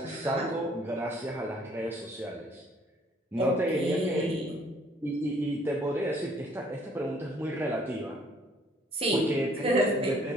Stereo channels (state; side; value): normal; both; correlation 0.61